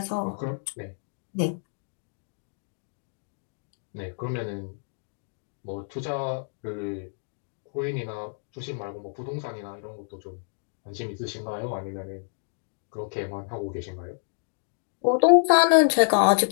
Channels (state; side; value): silent; right; digital silence